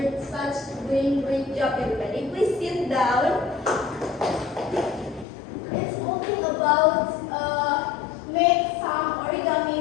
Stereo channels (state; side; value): drops out; right; at 5.2 s